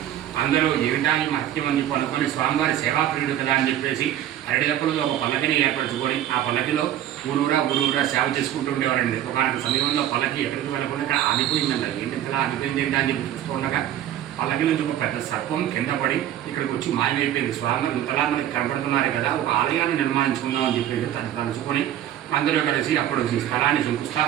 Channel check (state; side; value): quieter; left; 11.7 dB